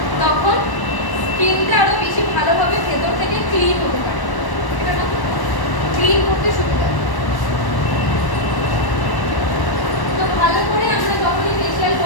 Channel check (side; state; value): right; late; 1.1 ms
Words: তখন স্কিনটা আরো বেশি ভালোভাবে ভেতর থেকে ক্লিন হতে পারে, এটা না ক্লিন করতে সুবিধা। তো ভালো করে আমরা যখনই ফেশিয়াল